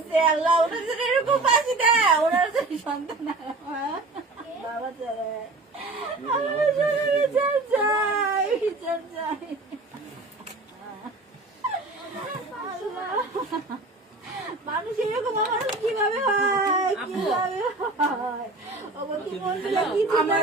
আল্লাহ ওনাদের এরকম বাঁচি দেয়। ওনার সন্তান বাবা চলে মানুষ এরকম মানুষ কিভাবে হয়, কিভাবে হয়?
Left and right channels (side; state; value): left; quieter; 3.2 dB